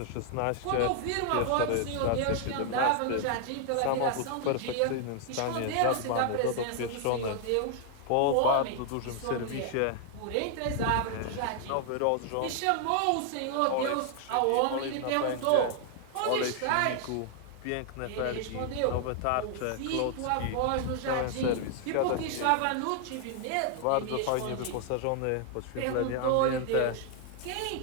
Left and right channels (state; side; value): different; both; correlation 0.00